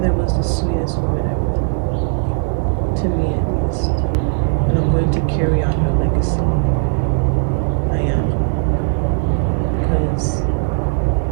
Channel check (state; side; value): silent; left; digital silence